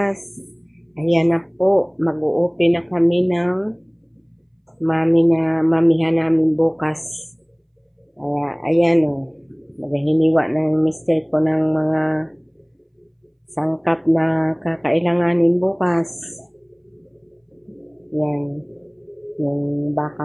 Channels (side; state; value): both; identical; correlation 1.00